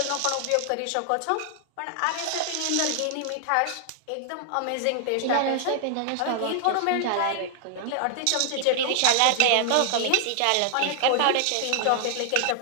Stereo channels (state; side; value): different; both; correlation 0.00